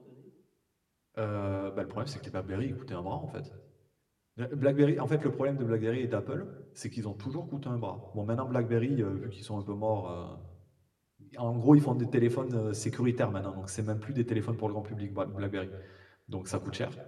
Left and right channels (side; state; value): both; identical; correlation 1.00